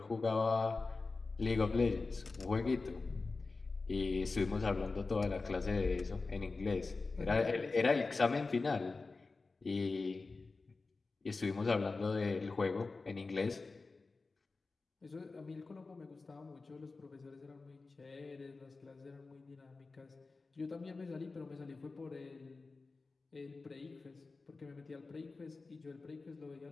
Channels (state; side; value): quieter; right; 3.9 dB